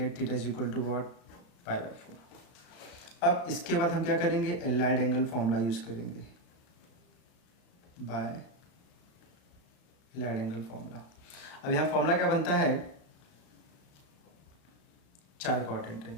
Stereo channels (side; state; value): right; late; 34 ms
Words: theta is equal to what? Pi by 4. अब इसके बाद हम क्या करेंगे, एलाइड एंगल फॉर्मूला यूज करेंगे, बाय एलाइड एंगल फॉर्मूला. अब यहाँ फॉर्मूला क्या बनता है, 4 क्वाड्रेंट है.